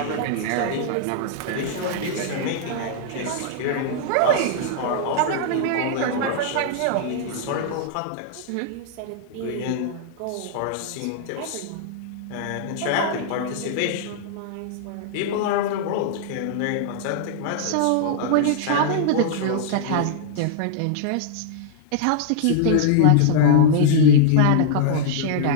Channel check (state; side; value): different; both; correlation -0.01